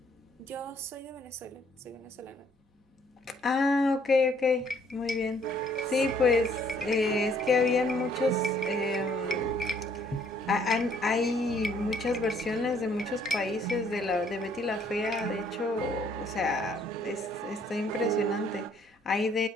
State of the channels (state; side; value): normal; both; correlation 0.64